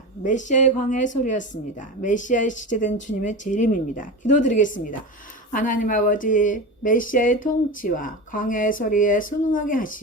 메시아의 광야의 소리였습니다. 메시아에 지체된 주님의 재림입니다. 기도드리겠습니다. 하나님 아버지, 메시아의 통치와 광야의 소리에 순응하게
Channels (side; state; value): both; normal; correlation 0.25